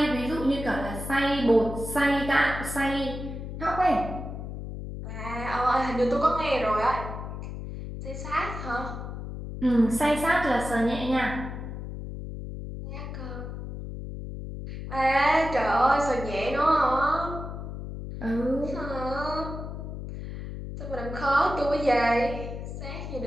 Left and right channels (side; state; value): left; noise; hum, 8 dB below the sound